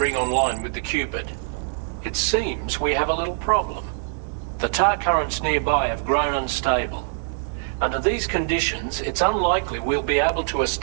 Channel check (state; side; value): silent; left; digital silence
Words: online with the Cupid. It seems we have a little problem. The tar currents nearby have grown unstable. Under these conditions, it's unlikely we'll be able to